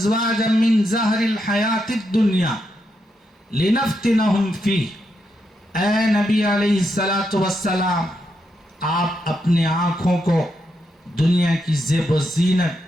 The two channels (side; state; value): both; normal; correlation 0.82